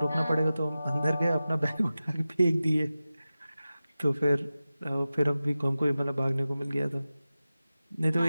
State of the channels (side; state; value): both; inverted; correlation -0.95